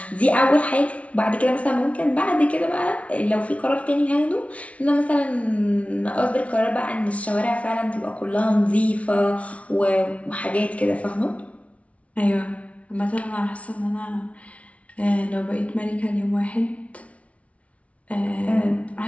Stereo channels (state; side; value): late; right; 0.064 ms